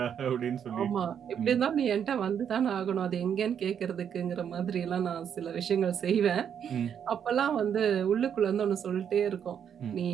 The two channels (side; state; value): left; quieter; 8.3 dB